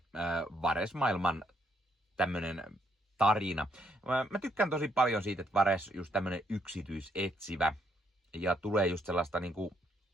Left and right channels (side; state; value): both; normal; correlation 0.73